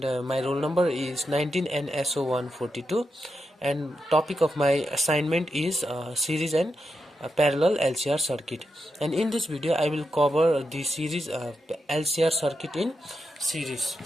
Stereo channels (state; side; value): normal; both; correlation 0.86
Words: my roll number is 19 NSO 142, and topic of my assignment is series and parallel LCR circuit. And in this video I will cover the series LCR circuit in series.